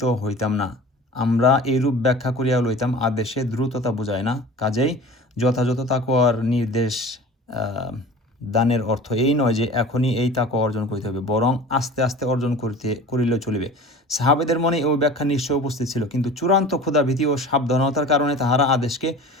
হইতাম না। আমরা এইরূপ ব্যাখ্যা করিয়া লইতাম আদেশে দ্রুততা বোঝায় না, কাজেই যথাযথ তাকওয়ার নির্দেশ দানের অর্থ এই নয় যে এখনই এই তাকওয়া অর্জন করিতে হবে, বরং আস্তে আস্তে অর্জন করিলেও চলিবে। সাহাবেদের মনে ওই ব্যাখ্যা নিশ্চয় উপস্থিত ছিল, কিন্তু চূড়ান্ত ক্ষুধাভীতি ও সাবধানতার কারণে তাহারা আদেশকে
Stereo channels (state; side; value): normal; both; correlation 0.39